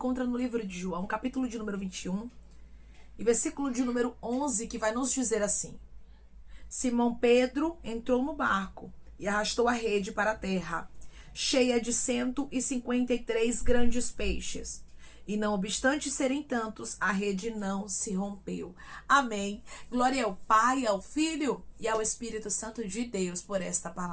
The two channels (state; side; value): identical; both; correlation 1.00